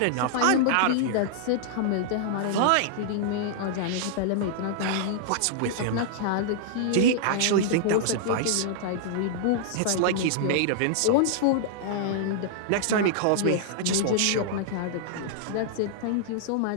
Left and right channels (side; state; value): both; different; correlation -0.01